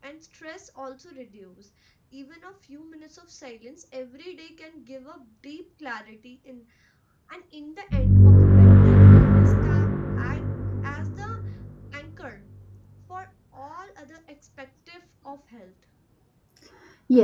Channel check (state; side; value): identical; both; correlation 1.00